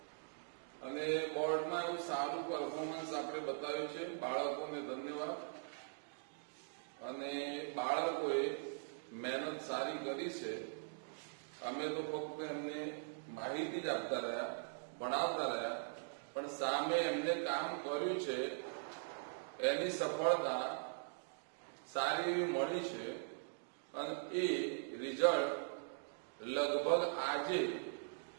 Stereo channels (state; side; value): silent; left; digital silence